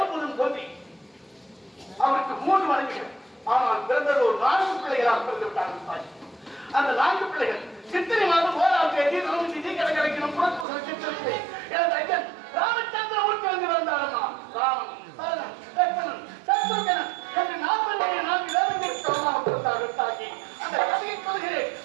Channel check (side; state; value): left; drops out; at 10.7 s